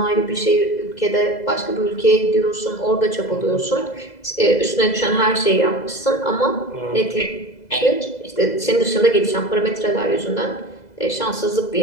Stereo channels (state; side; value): late; right; 2.0 ms